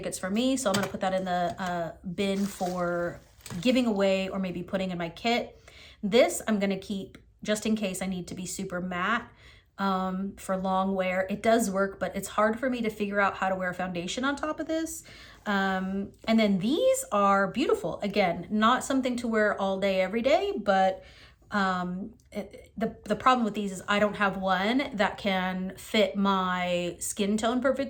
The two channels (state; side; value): identical; both; correlation 1.00